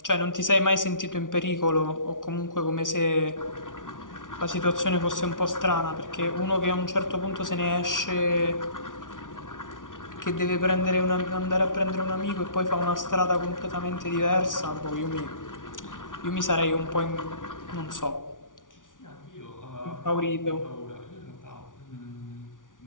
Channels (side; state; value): right; late; 0.88 ms